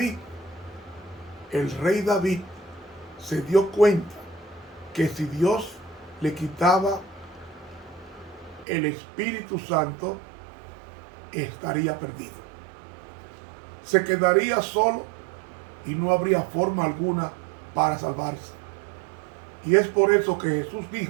El rey David se dio cuenta que si Dios le quitaba el Espíritu Santo, estaría perdido. Se quedaría solo y no habría forma alguna para salvarse. Y es por eso que Jesús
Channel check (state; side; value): drops out; left; at 8.7 s